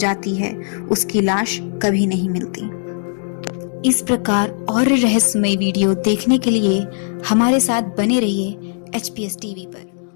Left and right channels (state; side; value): silent; right; digital silence